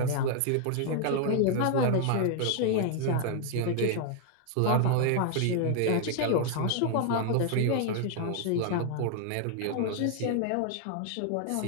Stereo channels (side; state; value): both; different; correlation 0.00